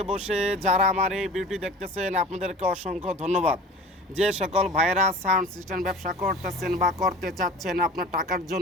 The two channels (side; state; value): both; normal; correlation 0.40